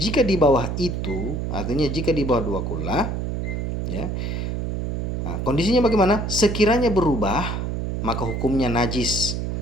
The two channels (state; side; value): noise; right; hum, 2 dB below the sound